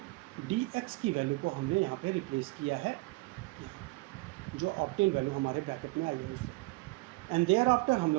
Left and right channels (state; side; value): quieter; left; 24.1 dB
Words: dx की वैल्यू को हमने यहाँ पे रिप्लेस किया है, यहाँ जो ऑब्टेन वैल्यू हमारे ब्रैकेट में आई है उससे। एंड देयर आफ्टर हम